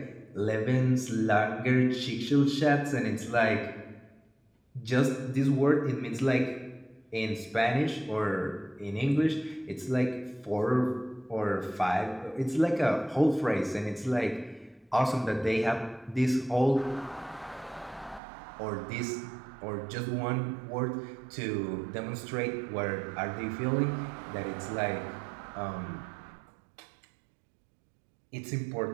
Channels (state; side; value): drops out; left; at 18.2 s